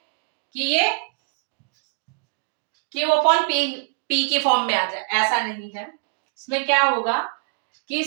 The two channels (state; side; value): quieter; left; 34.9 dB